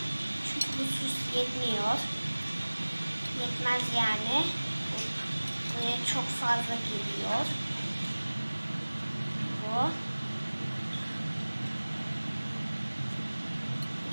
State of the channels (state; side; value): inverted; both; correlation -1.00